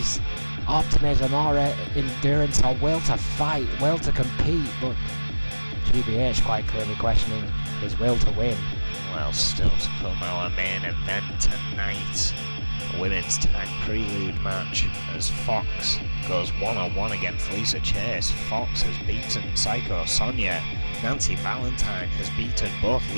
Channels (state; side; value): inverted; both; correlation -1.00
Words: optimism or endurance or will to fight, will to compete, but GBH quite clearly questioning his will to win. Well, still to come, our main event tonight, a women's tag prelude match as Fox goes one-on-one against Lisa Chase. Fox has beaten Psycho Sonia. Nancy Valentine has beaten both